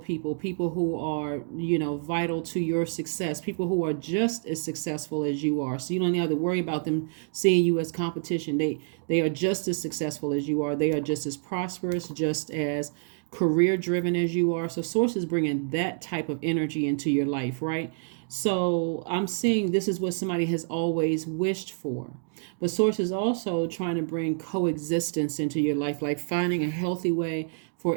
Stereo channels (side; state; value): left; silent; digital silence